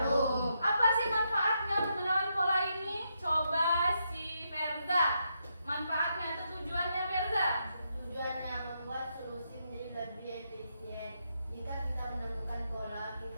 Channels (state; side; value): inverted; both; correlation -0.81